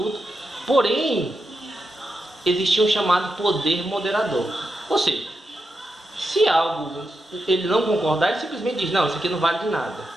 Porém, existia um chamado poder moderador. Ou seja, se algo ele não concordar, ele simplesmente diz, não, isso aqui não vale de nada.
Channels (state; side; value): normal; both; correlation 0.87